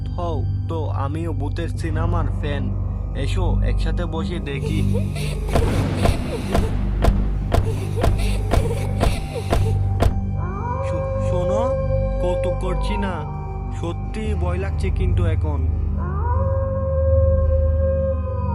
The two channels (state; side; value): identical; both; correlation 1.00